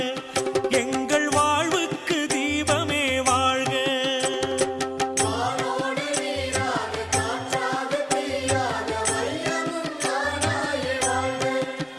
எங்கள் வாழ்வுக்கு தீபமே வாழ்க.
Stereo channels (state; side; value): identical; both; correlation 1.00